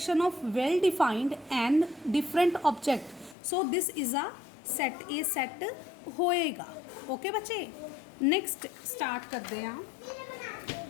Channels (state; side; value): drops out; right; at 3.4 s